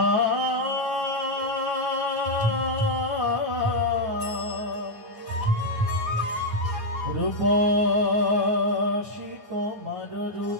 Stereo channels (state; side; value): late; left; 9.3 ms